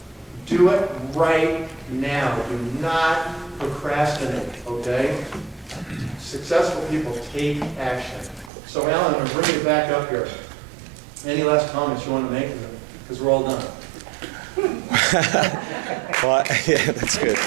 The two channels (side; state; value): left; drops out; at 8.5 s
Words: Do it right now. Do not procrastinate, okay? Successful people take action. So Alan, I'm going to bring you back up here. Any last comments you want to make? Because we're all done. Well, yeah, that's good.